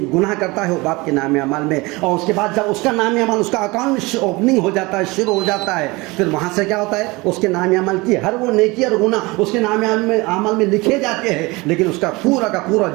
گناہ کرتا ہے وہ باپ کے نام اعمال میں، اور اس کے بعد جب اس کا نام اعمال، اس کا اکاؤنٹ اوپننگ ہو جاتا ہے، شروع ہو جاتا ہے، پھر وہاں سے کیا ہوتا ہے؟ اس کے نام اعمال کی ہر وہ نیکی اور گناہ اس کے نام اعمال میں لکھے جاتے ہیں، لیکن اس کا پورا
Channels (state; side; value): quieter; left; 23.6 dB